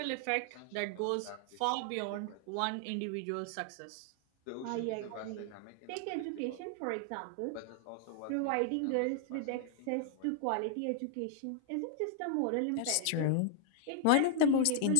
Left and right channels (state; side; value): different; both; correlation -0.01